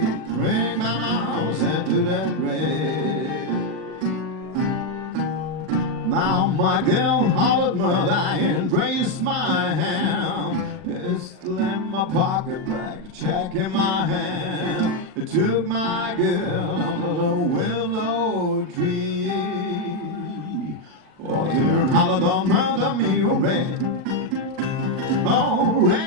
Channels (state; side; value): late; left; 40 ms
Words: ring my mouse into that rag. Now my girl hollered mother and raised my hand. Pistol in my pocket bag, check in my hand. It took my girl under the willow tree. Oh, dear, and hollered on mother me, oh, rag. Oh,